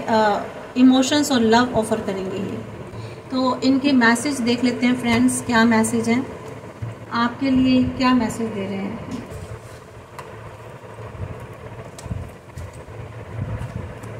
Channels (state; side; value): identical; both; correlation 1.00